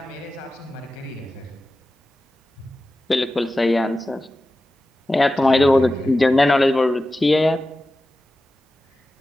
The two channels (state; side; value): normal; both; correlation 0.94